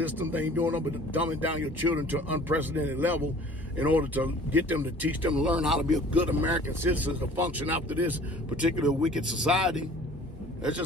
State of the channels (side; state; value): both; normal; correlation 0.49